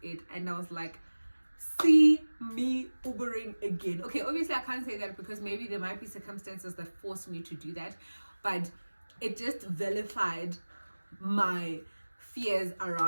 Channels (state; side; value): inverted; both; correlation -1.00